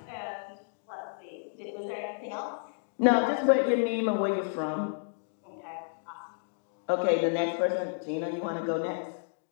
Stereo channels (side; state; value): right; silent; digital silence